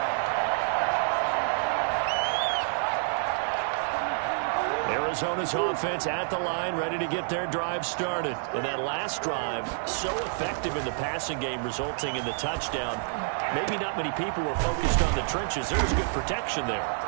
Arizona's offense at the line, ready to get their drive started. And that last drive, so effective in the passing game, resulting in the touchdown. Maybe not many people were focused on the trenches. There was good protection there.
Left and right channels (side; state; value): left; silent; 56 dB below the other